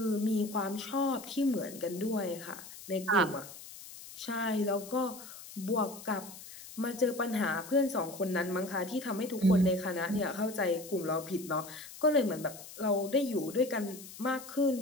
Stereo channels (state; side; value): noise; left; hiss, 15 dB below the sound